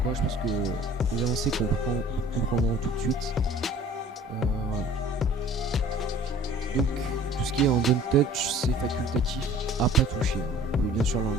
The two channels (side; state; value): both; normal; correlation 0.49